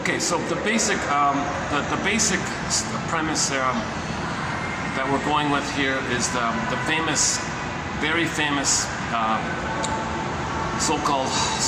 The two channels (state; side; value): identical; both; correlation 1.00